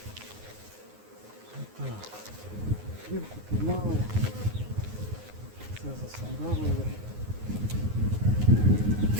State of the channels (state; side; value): late; left; 9.6 ms